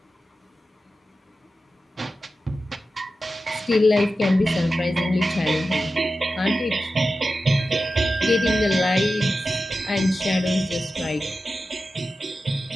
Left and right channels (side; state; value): both; normal; correlation 0.93